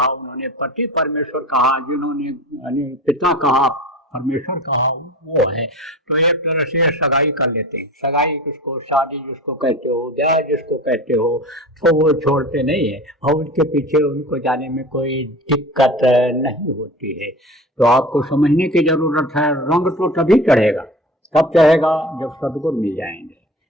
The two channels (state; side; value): normal; both; correlation 0.36